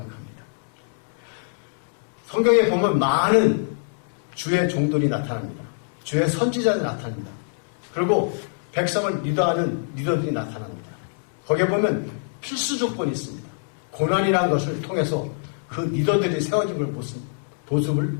성경에 보면 많은 주의 종들이 나타납니다. 주의 선지자들이 나타납니다. 그리고 백성을 리더하는 리더들이 나타납니다. 거기에 보면 필수 조건이 있습니다. 고난이라는 것을 통해서 그 리더들이 세워진 모습을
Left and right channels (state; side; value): silent; right; 62 dB below the other